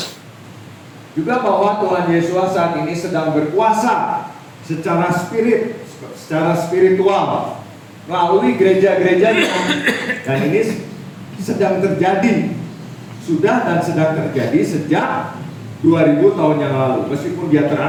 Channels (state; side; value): identical; both; correlation 1.00